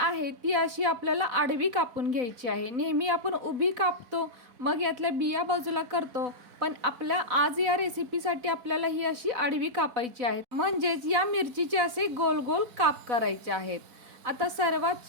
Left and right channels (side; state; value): left; late; 4.0 ms